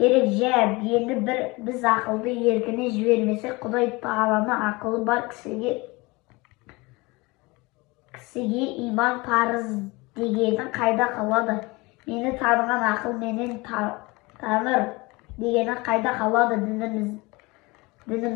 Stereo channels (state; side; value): quieter; right; 24.1 dB